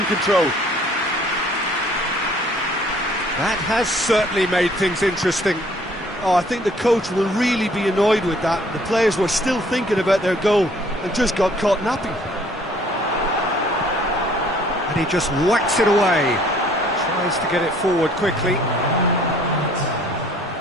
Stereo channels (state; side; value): normal; both; correlation 0.58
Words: control. That has certainly made things interesting. Oh, I think the coach will really be annoyed with that. The players were still thinking about their goal and just got caught napping. And he just whacks it away. Tries to get it forward quickly.